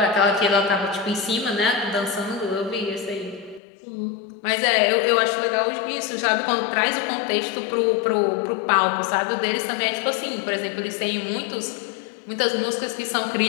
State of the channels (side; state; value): right; drops out; at 3.6 s